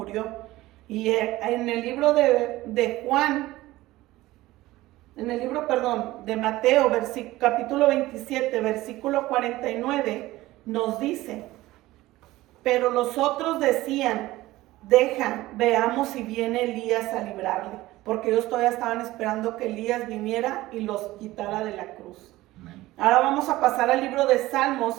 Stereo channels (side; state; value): left; quieter; 17.5 dB